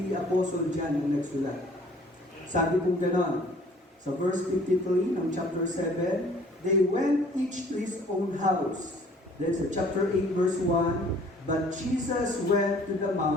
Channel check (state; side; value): normal; both; correlation 0.55